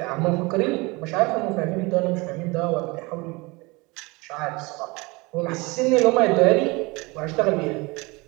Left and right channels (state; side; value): quieter; left; 25.1 dB